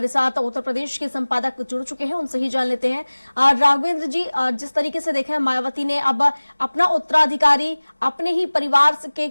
साथ उत्तर प्रदेश के संपादक जुड़ चुके हैं, उनसे ही जान लेते हैं। राघवेंद्र जी, जिस तरीके से देखें मायावती ने अब अपना उत्तराधिकारी अपने ही परिवार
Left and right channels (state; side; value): inverted; both; correlation -1.00